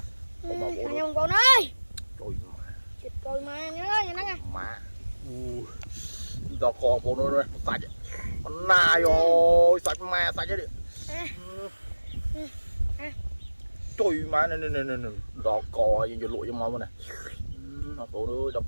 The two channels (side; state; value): both; inverted; correlation -1.00